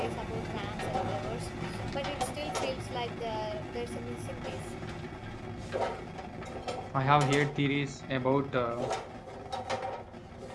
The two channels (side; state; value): both; identical; correlation 1.00